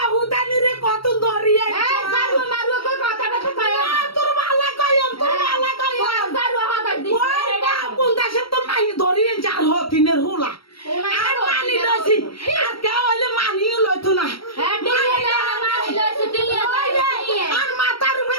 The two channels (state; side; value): late; right; 0.75 ms